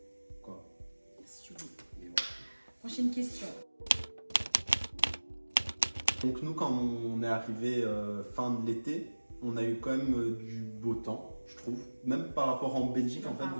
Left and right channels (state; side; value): inverted; both; correlation -1.00